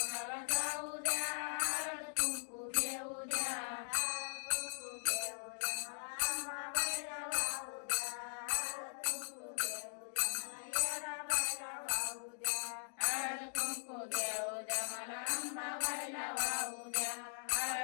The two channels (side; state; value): right; silent; digital silence